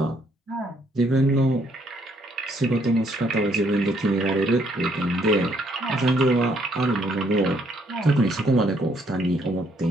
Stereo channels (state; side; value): normal; both; correlation 0.69